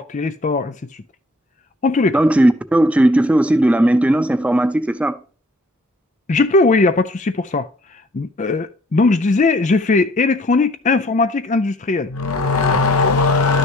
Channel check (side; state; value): both; normal; correlation 0.60